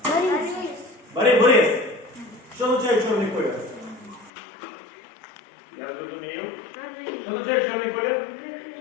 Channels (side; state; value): right; drops out; at 4.3 s